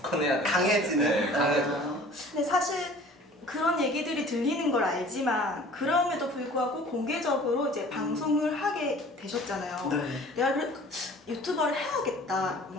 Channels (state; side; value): normal; both; correlation 0.48